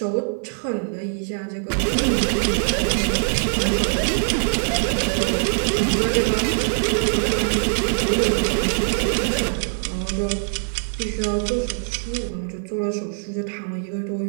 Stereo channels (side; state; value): left; silent; digital silence